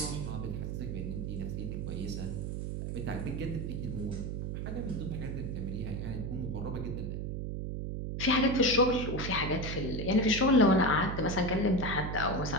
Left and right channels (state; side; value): noise; right; hum, 3 dB below the sound